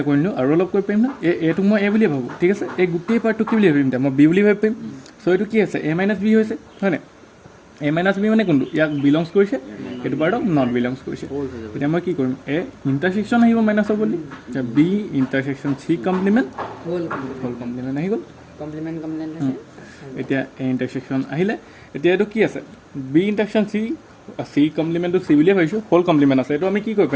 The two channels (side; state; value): both; identical; correlation 1.00